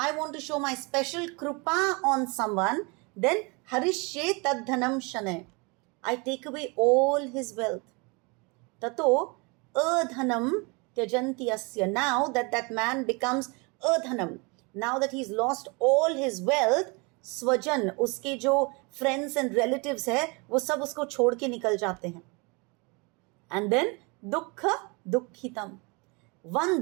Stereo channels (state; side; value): quieter; left; 29.6 dB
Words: want to show my special krupa on someone, then harishye tadhanam shane. I take away all his wealth. Tato adhanam tyajanti asya. Now that man becomes adhanam, now that he's lost all his wealth, स्वजन, उसके जो friends and relatives है, वो सब उसको छोड़ के निकल जाते हैं. एंड देन दुख दुखितम,